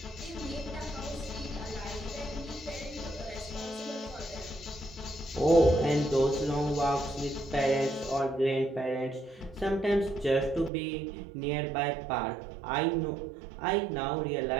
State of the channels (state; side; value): drops out; left; at 10.7 s